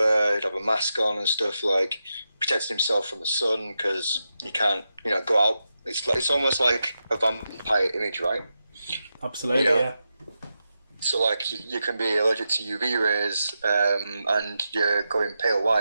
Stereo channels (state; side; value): inverted; both; correlation -0.88